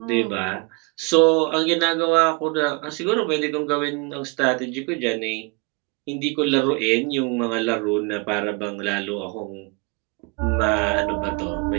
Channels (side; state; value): left; quieter; 30.2 dB